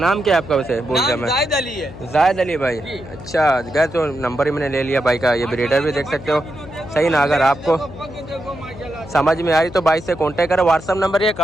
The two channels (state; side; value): noise; left; hum, 15 dB below the sound